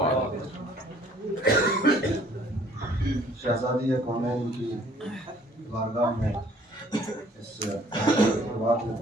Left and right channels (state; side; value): normal; both; correlation 0.58